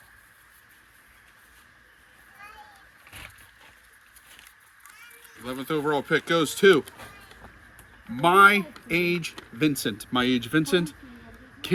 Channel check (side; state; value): both; identical; correlation 1.00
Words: th overall pick goes to My Age Vincent. My Age Vincent